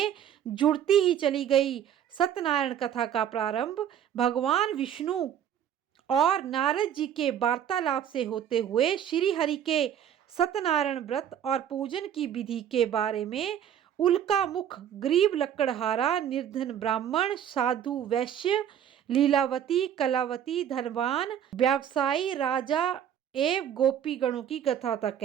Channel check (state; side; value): quieter; left; 9.6 dB